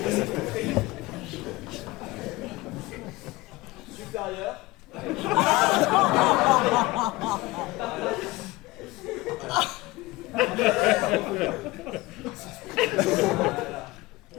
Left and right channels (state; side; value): quieter; right; 20.5 dB